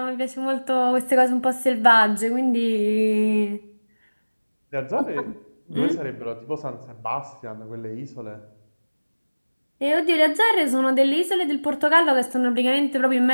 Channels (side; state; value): both; inverted; correlation -1.00